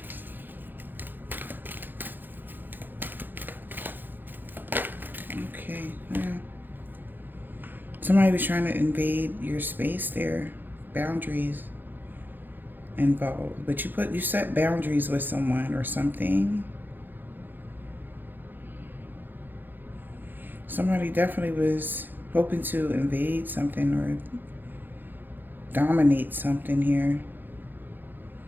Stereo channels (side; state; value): left; late; 0.091 ms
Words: Okay. Yeah. Somebody was trying to invade your space there. Boundaries involved. But you set boundaries with someone or something. Somebody definitely was hoping to invade something or dominate something here.